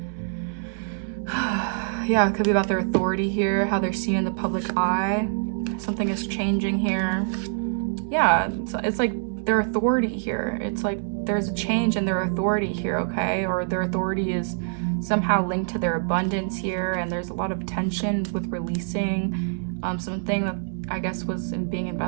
Yeah, it could be about their authority here, how they're seen in the public eye. Something is changing here. Yeah, it's like their authority here. It's like there's a change in their authority here, okay? Or their authority is somehow linked to their abundance here, and there's a lot of tension with releasing something that I guess was being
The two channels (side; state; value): left; silent; digital silence